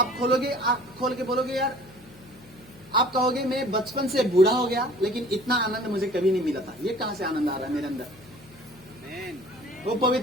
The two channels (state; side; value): noise; left; hum, 23 dB below the sound